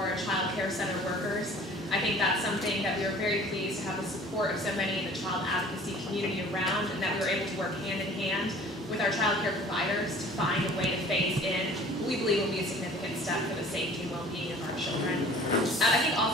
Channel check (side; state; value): both; normal; correlation 0.48